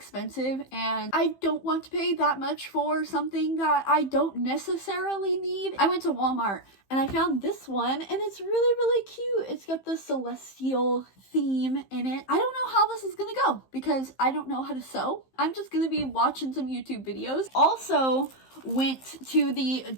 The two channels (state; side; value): late; right; 15 ms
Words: and I don't want to pay that much for something that I don't necessarily need. I went to Walmart and I found this one, and it's really cute. It's got the celestial theme in it. I don't know how this is gonna go because I don't know how to sew. I'm just gonna be watching some YouTube videos. Also went to the